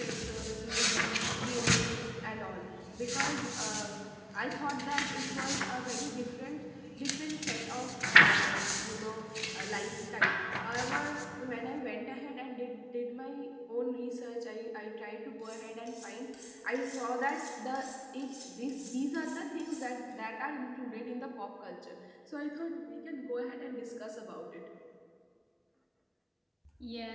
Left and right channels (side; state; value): both; identical; correlation 1.00